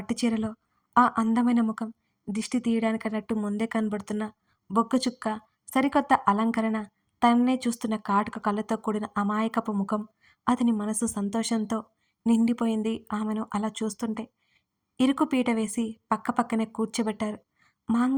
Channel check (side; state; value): both; identical; correlation 1.00